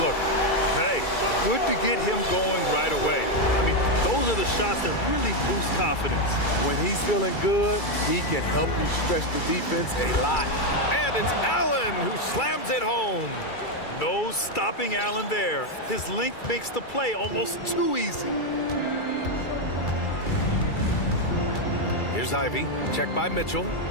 Hey, good to get him going right away. I mean, those are the shots that really boost confidence. When he's feeling good, he can help you stretch the defense a lot. And it's Allen who slams it home. No stopping Allen there. His length makes the play almost too easy. Here's Ivy. Checked by Mitchell.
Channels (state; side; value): late; right; 2.3 ms